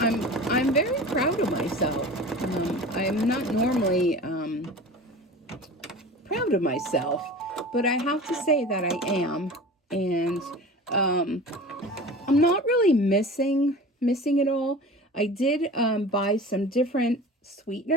I'm very proud of myself. I'm not normally proud of myself, but I have to say that I am. And I'm not really missing it all. I did buy some different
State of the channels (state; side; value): normal; both; correlation 0.37